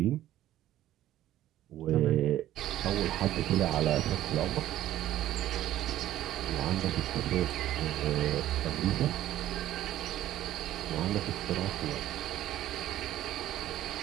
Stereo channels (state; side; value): quieter; left; 13.3 dB